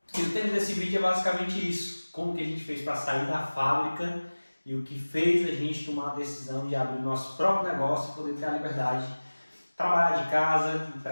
E o tema desse vídeo é basicamente isso. Como que a gente fez para sair da fábrica e o que fez a gente tomar a decisão de abrir o nosso próprio negócio e poder ter a liberdade de trabalhar de casa,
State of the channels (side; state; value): both; inverted; correlation -1.00